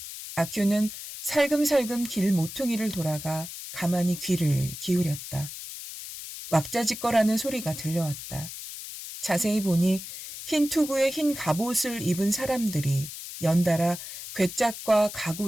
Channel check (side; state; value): left; noise; hiss, 10 dB below the sound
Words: 아큐는 살금살금 길 모퉁이를 돌아가 가만히 귀를 기울였다. 왁자지껄하는 소리가 들려왔다. 자세히 보니 흰 투구에 흰 갑옷을 입은 사람들이 연달아 괴짝과